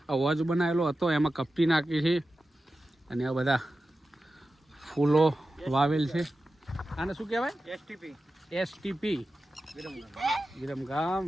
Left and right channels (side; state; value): both; normal; correlation 0.93